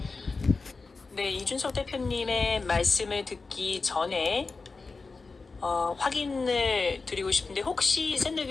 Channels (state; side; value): quieter; right; 4.1 dB